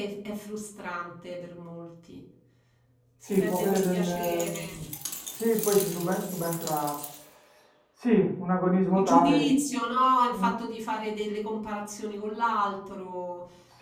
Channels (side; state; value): both; identical; correlation 1.00